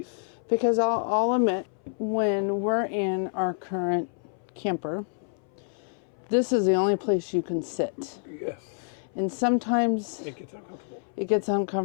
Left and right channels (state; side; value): silent; right; 59 dB below the other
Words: Because I'll admit, when we're in our current camper, this is the only place you can sit. Yes. And sometimes It gets uncomfortable. it gets